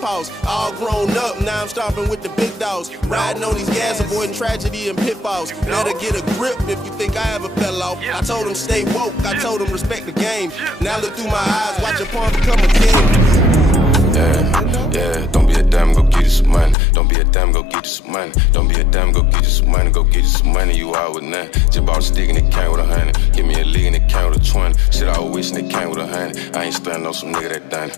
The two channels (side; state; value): right; drops out; at 16.8 s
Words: All grown up, now I'm stomping with the big dogs. Riding on these gas, avoiding tragedy and pitfalls. Better get a grip if you think I ever fell off. I told them stay woke, I told them respect the game. Now look through my eyes, watch a pawn become a king. Yeah, don't be a damn, go get you some money. Don't be a damn, go get you some money. Don't be a damn, go get you some money. Go get you some money, you out with nothing. Just bought a stick and it came with 100. Give me a league and it came with a 20. Shit, I was wishing it came with 100. I ain't stunning on some nigga that done